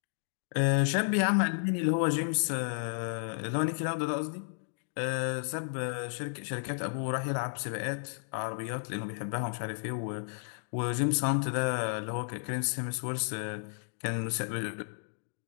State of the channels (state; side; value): silent; right; digital silence